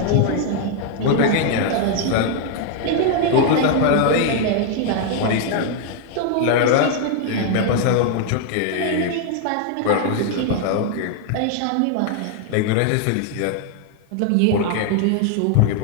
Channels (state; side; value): different; both; correlation 0.00